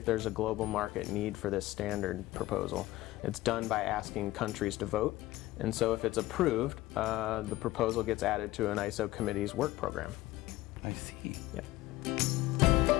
there's a global market need for this standard proposal. It's done by asking countries to vote, and so if it's approved, the proposal gets added to an ISO committee's work program. I see. Yeah.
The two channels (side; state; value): right; quieter; 17.2 dB